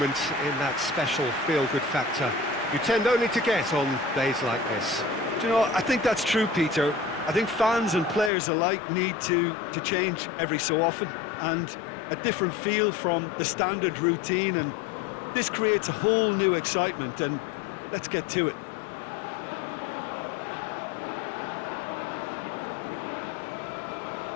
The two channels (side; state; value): right; drops out; at 8.3 s